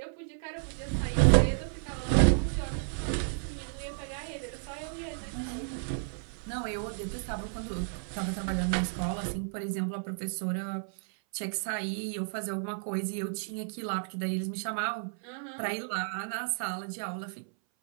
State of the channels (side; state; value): left; silent; 56 dB below the other